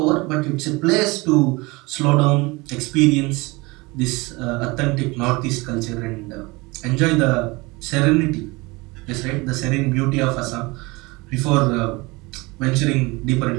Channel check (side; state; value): left; quieter; 24.3 dB